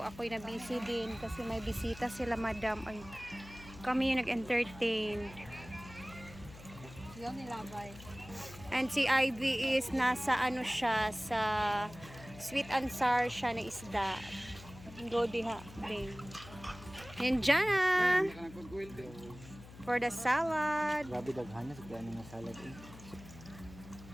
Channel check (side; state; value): left; noise; hum, 17 dB below the sound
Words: Ako'y na busy din kasi may bisita sila madam. Ay, kami yung nag-entertain. Yan nilabay. And si Ivy is nasa ano siya, sa sweet and sour siya na isda. Go diha, babe. And Jana! For the salad. Grabe daghan na sa plano ng salad eh.